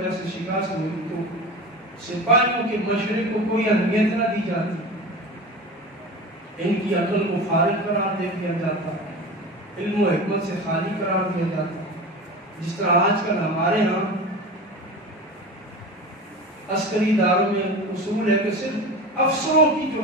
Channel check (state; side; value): normal; both; correlation 0.30